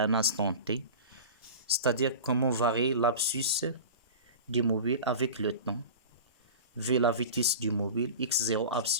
instant t. C'est-à-dire comment varier l'abscisse du mobile avec le temps. V la vitesse du mobile, x0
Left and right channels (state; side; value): inverted; both; correlation -0.34